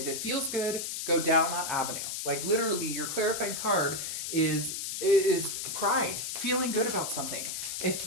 it feels good, go down that avenue. Like, literally, your clarifying card is pride, feeling good about something.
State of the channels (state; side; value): noise; left; hiss, 4 dB below the sound